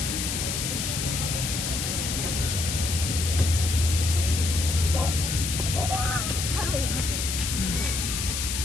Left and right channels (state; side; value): noise; left; hiss, 2 dB below the sound